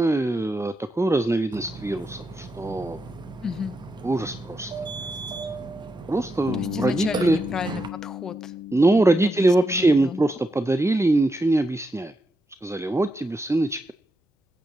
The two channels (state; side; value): normal; both; correlation 0.84